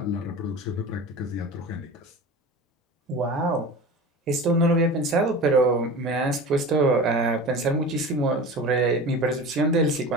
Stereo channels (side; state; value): both; normal; correlation 0.34